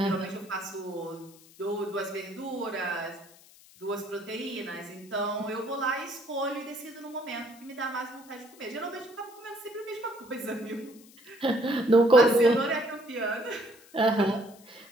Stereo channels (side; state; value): left; noise; hiss, 24 dB below the sound